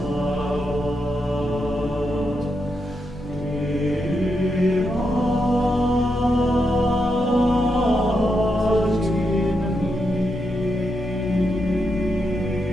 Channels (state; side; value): normal; both; correlation 0.83